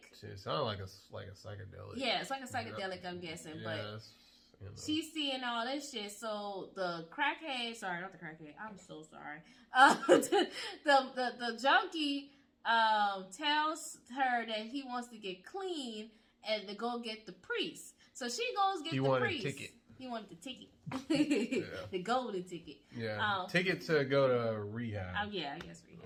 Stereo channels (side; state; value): both; identical; correlation 1.00